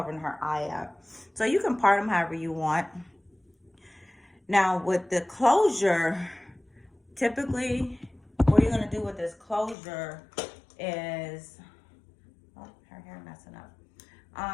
her eye up. So you can part them however you want. Now with the closure, typically what you're going to do with this closure is, oh, her hair messing up.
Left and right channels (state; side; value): drops out; right; at 9.8 s